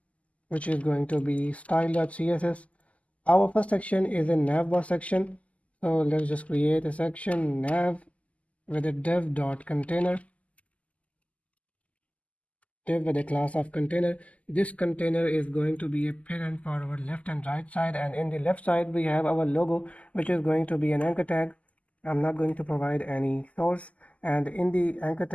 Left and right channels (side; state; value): right; late; 0.068 ms